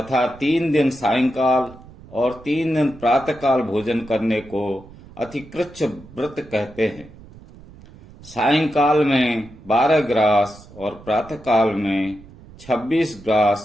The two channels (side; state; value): right; noise; rumble, 20 dB below the sound